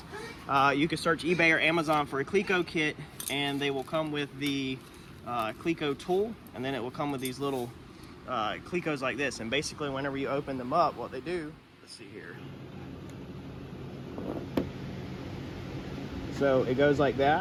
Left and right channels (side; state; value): both; identical; correlation 1.00